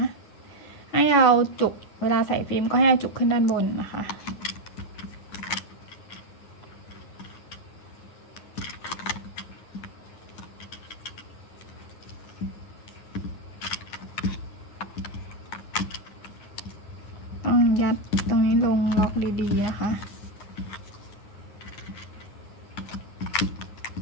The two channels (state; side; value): late; right; 9.6 ms